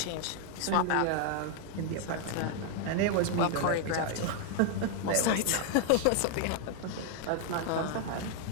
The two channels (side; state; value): both; different; correlation 0.00